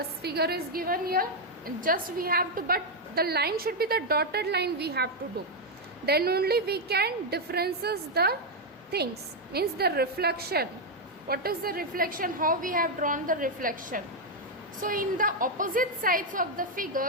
figure is given here. And just we have to, but the line should be the dotted line we have to do. Then only we can differences the things, means the reflection. What is the reflection? How we have drawn the reflection? So in the opposite sides of the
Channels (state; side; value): normal; both; correlation 0.01